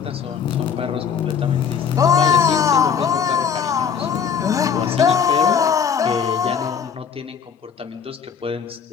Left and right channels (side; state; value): right; quieter; 7.1 dB